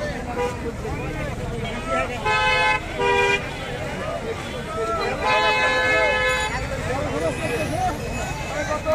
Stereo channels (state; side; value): identical; both; correlation 1.00